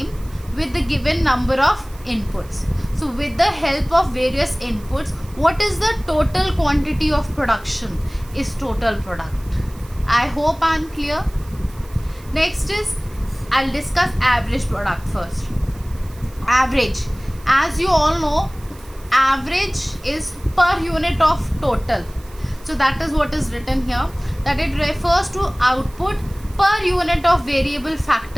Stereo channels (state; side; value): noise; right; hiss, 24 dB below the sound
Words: with the given number of inputs. So with the help of various inputs, what is the total quantity of production is total product. I hope I am clear. Next is, I'll discuss average product first. Average, as you all know, average is per unit of total. So that is what is written here, that it refers to output per unit of variable